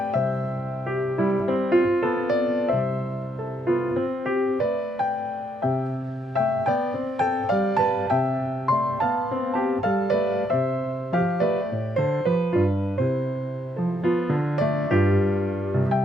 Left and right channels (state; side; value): normal; both; correlation 0.76